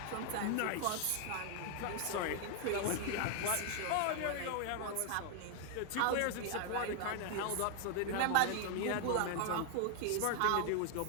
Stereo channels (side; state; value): both; different; correlation 0.00